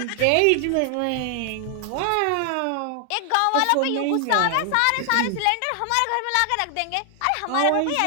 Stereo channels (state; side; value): different; both; correlation 0.00